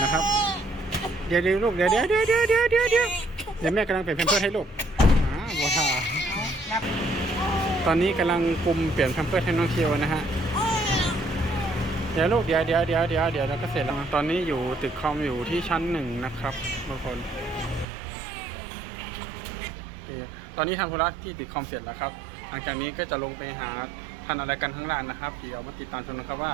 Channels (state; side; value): drops out; left; at 17.9 s